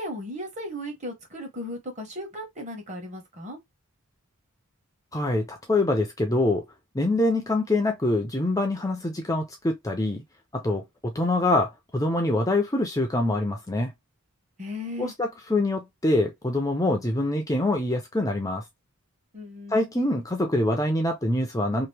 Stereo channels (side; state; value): both; normal; correlation 0.69